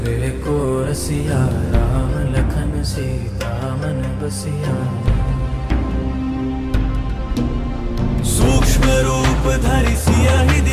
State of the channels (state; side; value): identical; both; correlation 1.00